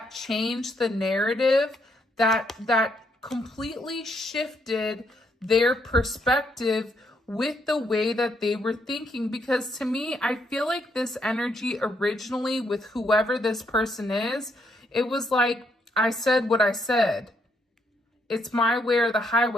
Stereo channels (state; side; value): normal; both; correlation 0.74